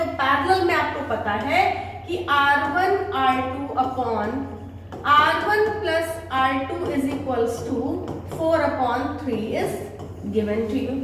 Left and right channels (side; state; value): both; identical; correlation 1.00